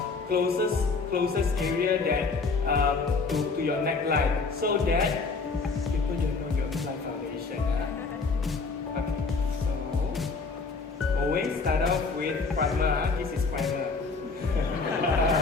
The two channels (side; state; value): right; quieter; 4.3 dB